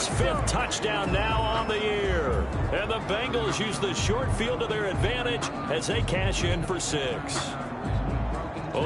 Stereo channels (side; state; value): both; identical; correlation 1.00